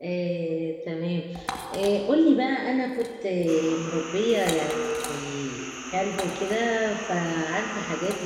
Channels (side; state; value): both; identical; correlation 1.00